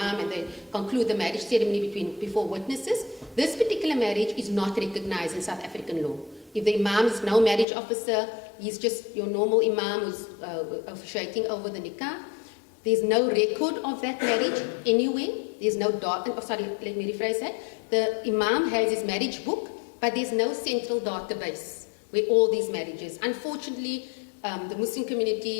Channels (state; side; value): drops out; right; at 7.7 s